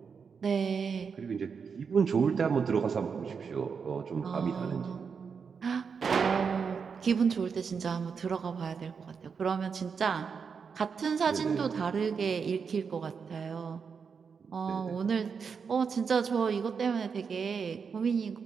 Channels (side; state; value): left; quieter; 6.0 dB